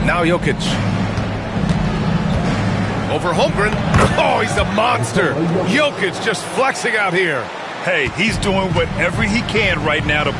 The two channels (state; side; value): identical; both; correlation 1.00